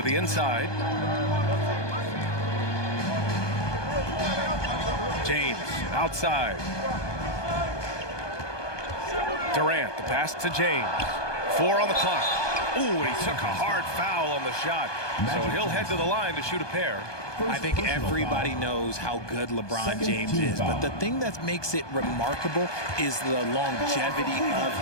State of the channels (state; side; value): late; right; 1.2 ms